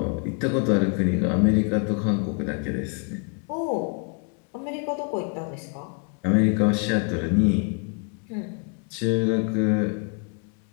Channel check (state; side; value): quieter; right; 36.4 dB